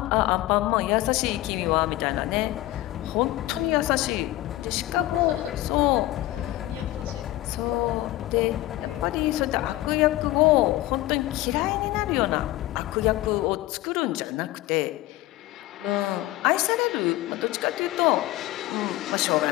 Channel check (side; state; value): right; quieter; 16.8 dB